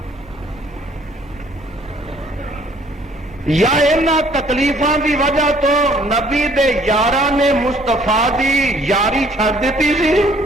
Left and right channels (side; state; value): both; normal; correlation 0.60